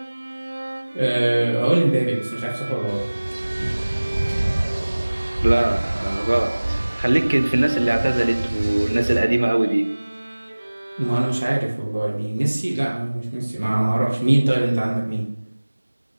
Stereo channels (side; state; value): both; inverted; correlation -1.00